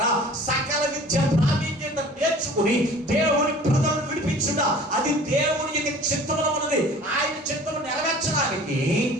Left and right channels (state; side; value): normal; both; correlation 0.46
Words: సకల విద్య ప్రావీణ్యత నేర్చుకుని దేవుని ప్రజలను విడిపించుట, అది దేవుని యొక్క చిత్తములో ఉన్నది. ఆయన చిత్తము నెరవేర్చడానికి